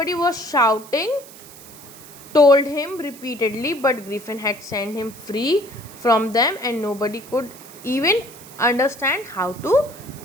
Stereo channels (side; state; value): right; noise; hiss, 19 dB below the sound